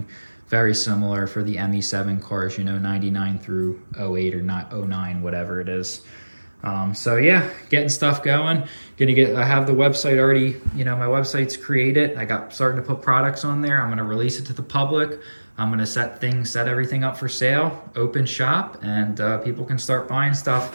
very similar for the ME7 cars, you know, 99 through 08 or not 09, whatever it is. So yeah, getting stuff going. I have the website already, you know, my website's created. I got starting to put products on there. I'm going to release it to the public. I'm going to set everything up for sale, open shop, and people can start buying stuff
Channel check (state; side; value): inverted; both; correlation -1.00